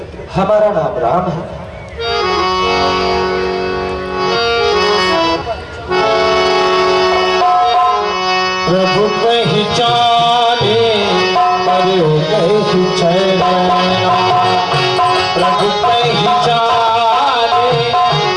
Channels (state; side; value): identical; both; correlation 1.00